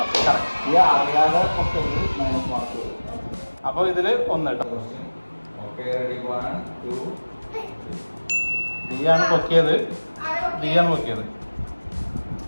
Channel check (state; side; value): inverted; both; correlation -1.00